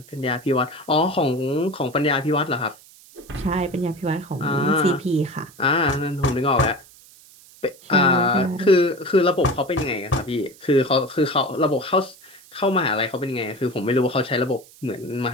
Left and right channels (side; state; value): right; noise; hiss, 24 dB below the sound